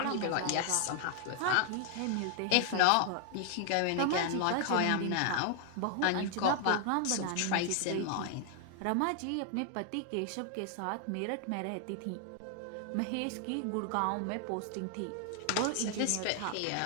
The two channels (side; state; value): both; different; correlation 0.00